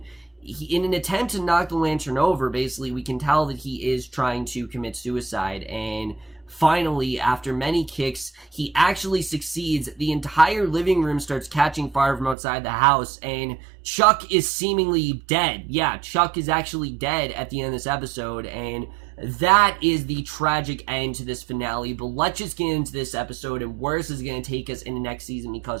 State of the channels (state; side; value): drops out; left; at 12.4 s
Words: in an attempt to knock the lantern over, basically, we can tell that he is trying to commit suicide, and finally, after many kicks, he actually succeeds. The entire living room starts catching fire from outside the house, and Chuck is seemingly dead. Yeah, Chuck is actually dead at the end of this episode, and that is the tragic end to this finale. But let's just get into this episode and where this is going to take us in the next season,